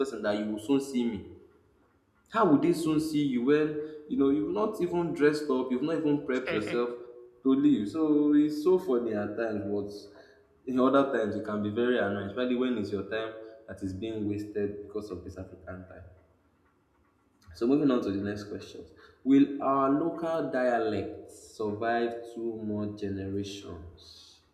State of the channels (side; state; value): both; identical; correlation 1.00